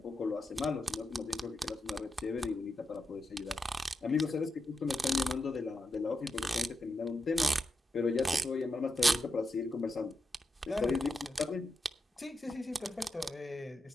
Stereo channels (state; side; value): normal; both; correlation 0.86